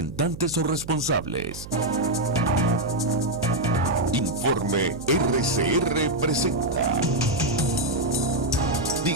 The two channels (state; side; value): noise; right; hum, 13 dB below the sound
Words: o responsables. Informe RCR presenta